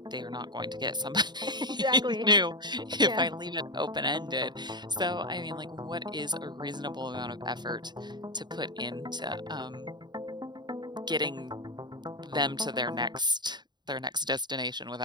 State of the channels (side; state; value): left; late; 0.21 ms